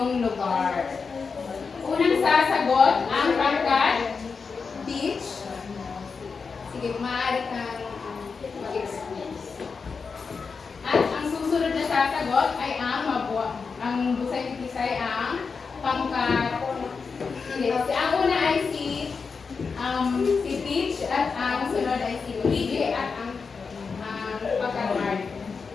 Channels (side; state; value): right; quieter; 5.1 dB